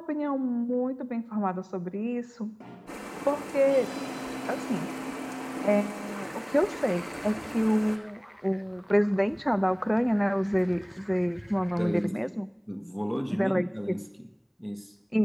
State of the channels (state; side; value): identical; both; correlation 1.00